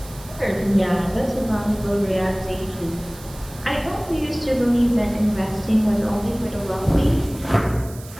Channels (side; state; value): right; noise; hiss, 19 dB below the sound